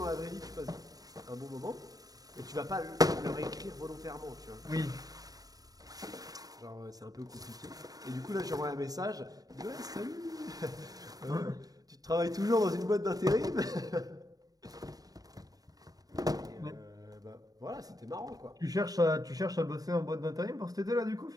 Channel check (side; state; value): left; late; 0.18 ms